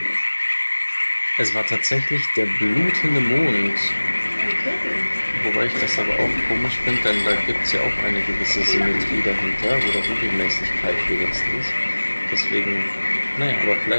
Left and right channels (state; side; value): inverted; both; correlation -1.00